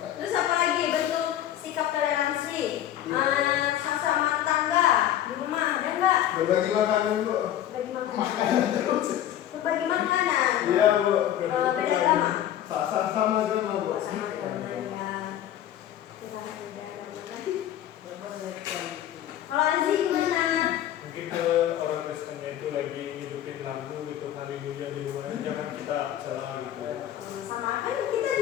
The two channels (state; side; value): quieter; right; 11.7 dB